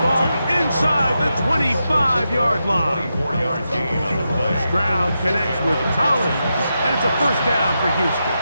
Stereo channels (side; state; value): both; inverted; correlation -0.87